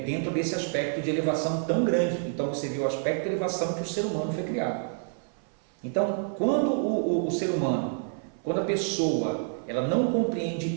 dentro desse aspecto de elevação tão grande. Então você vê o aspecto de elevação que o ser humano foi criado. Então, quando o ser humano, quando a pessoa, ela não compreende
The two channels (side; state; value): left; silent; 56 dB below the other